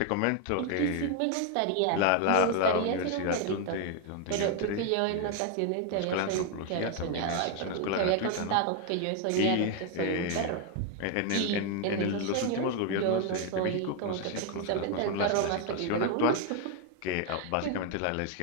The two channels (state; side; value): different; both; correlation 0.01